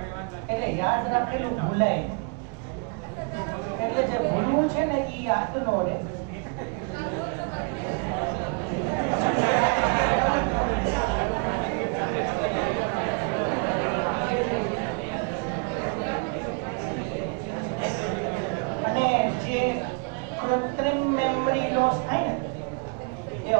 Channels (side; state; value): left; quieter; 36.4 dB